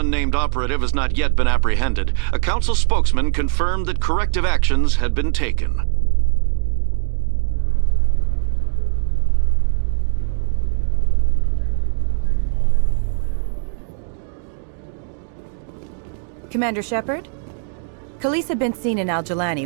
operative has not yet been apprehended, a Council spokesman confirmed that corrective actions had been taken. Commander Shepard? Khaleesa bint seen in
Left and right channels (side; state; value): left; silent; 62 dB below the other